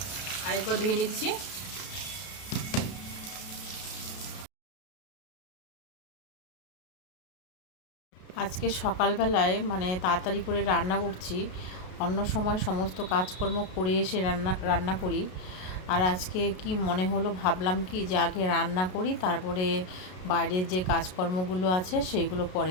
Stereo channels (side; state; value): right; late; 33 ms